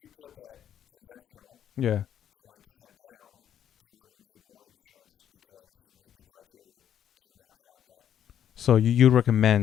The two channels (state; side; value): quieter; right; 9.9 dB